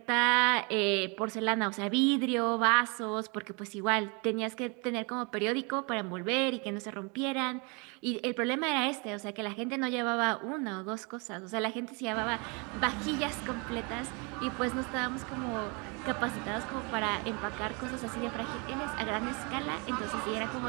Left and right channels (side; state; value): left; quieter; 31.6 dB